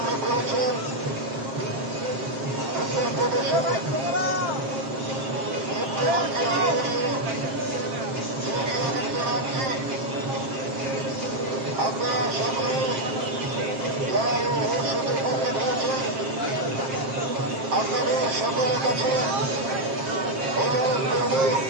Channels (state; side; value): late; left; 7.5 ms